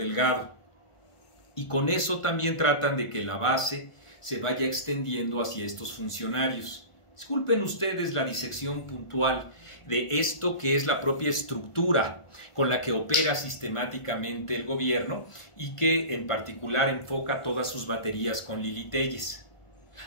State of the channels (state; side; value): late; right; 1.5 ms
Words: Y con eso también tratan de que la base se vaya extendiendo hacia estos funcionarios. Disculpen ustedes la disección puntual de esto que es la propia estructura con la que opera sistemáticamente el gobierno y que en particular enfoca todas sus baterías con Lili Téllez.